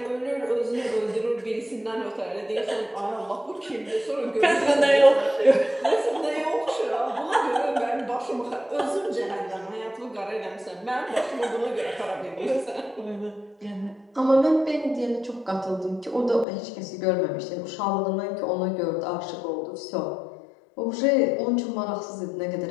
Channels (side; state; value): right; drops out; at 16.4 s